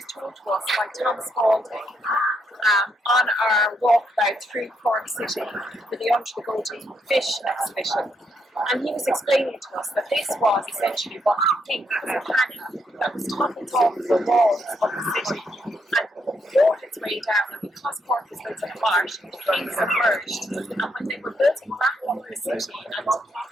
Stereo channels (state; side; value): normal; both; correlation 0.77